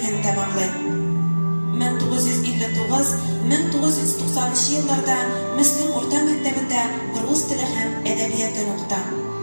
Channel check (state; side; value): inverted; both; correlation -1.00